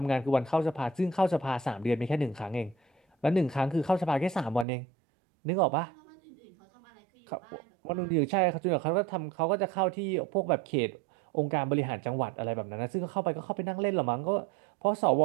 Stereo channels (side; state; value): left; drops out; at 4.7 s